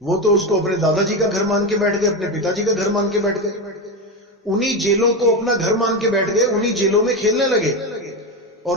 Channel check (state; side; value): normal; both; correlation 0.15